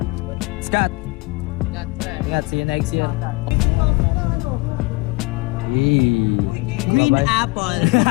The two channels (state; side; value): quieter; right; 25.3 dB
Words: Scott. Ingat, see you next year. Hey. Green Bye-bye. apple.